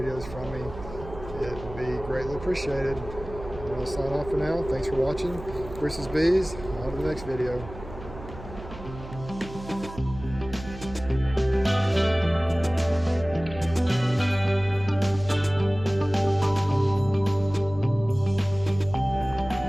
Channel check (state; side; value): noise; right; hum, 14 dB below the sound